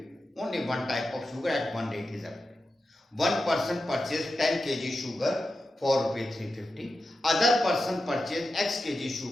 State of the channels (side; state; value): both; normal; correlation 0.91